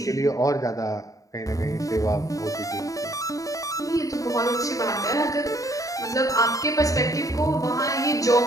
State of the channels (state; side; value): late; right; 0.16 ms